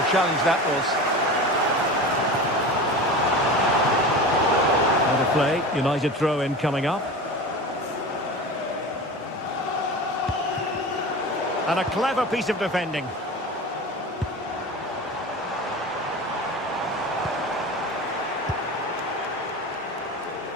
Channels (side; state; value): both; normal; correlation 0.31